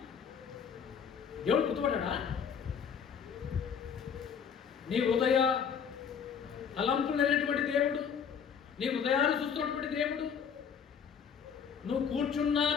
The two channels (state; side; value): quieter; right; 7.1 dB